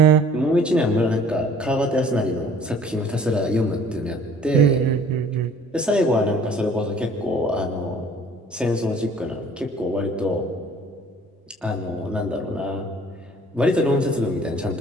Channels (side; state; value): both; normal; correlation 0.53